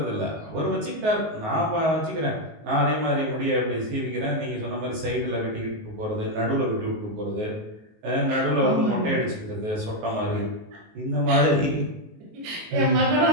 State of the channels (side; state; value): left; late; 19 ms